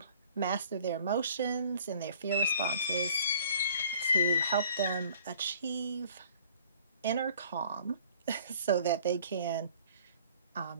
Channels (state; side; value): inverted; both; correlation -0.54